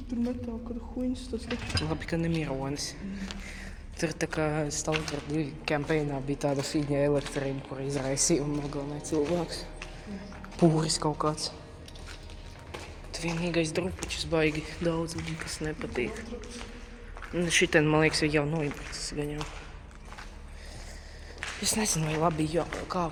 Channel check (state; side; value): identical; both; correlation 1.00